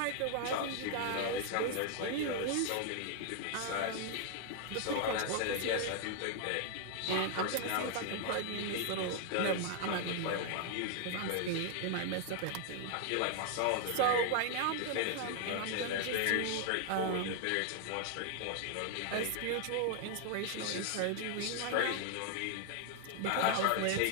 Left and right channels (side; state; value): both; different; correlation 0.00